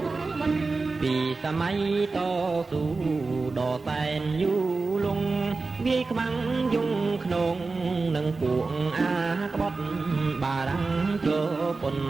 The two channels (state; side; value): quieter; left; 3.9 dB